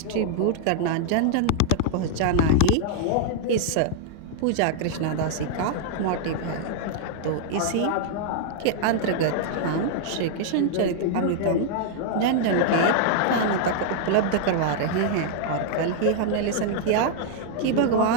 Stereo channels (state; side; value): different; both; correlation -0.01